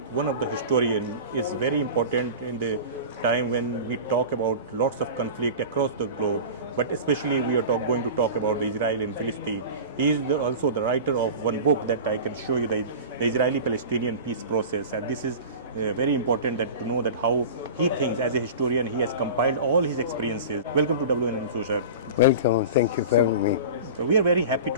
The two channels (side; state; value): both; inverted; correlation -0.34